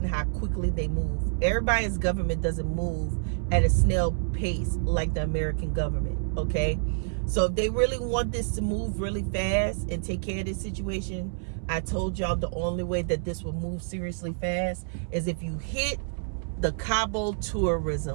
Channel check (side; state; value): left; silent; 59 dB below the other